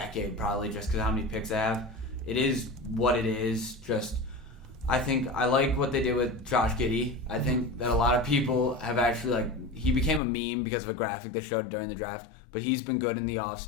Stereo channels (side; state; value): right; drops out; at 10.2 s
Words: probably, just because how many picks they have. It is what it is. I think I like what they did with Josh Giddey. I think that a lot of people have actually he became a meme because of a graphic they showed during the draft, but he's been good in the